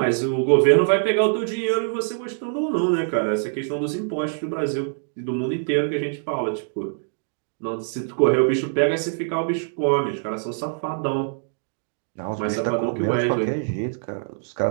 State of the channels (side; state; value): left; silent; digital silence